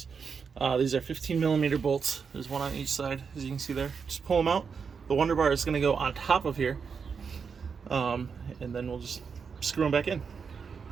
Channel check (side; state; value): left; quieter; 5.9 dB